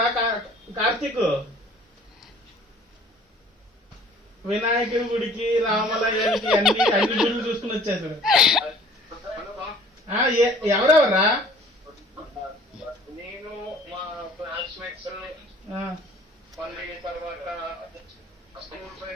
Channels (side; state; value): both; normal; correlation 0.52